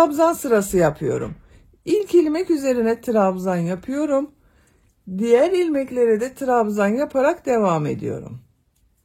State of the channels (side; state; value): both; identical; correlation 1.00